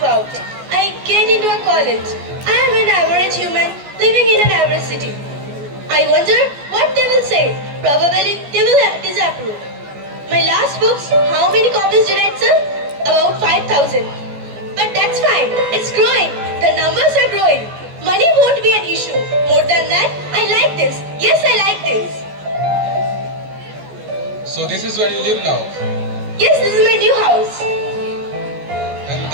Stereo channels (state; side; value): late; left; 14 ms